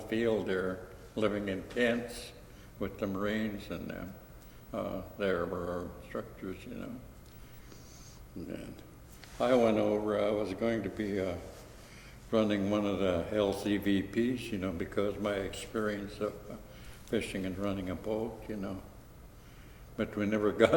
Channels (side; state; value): both; identical; correlation 1.00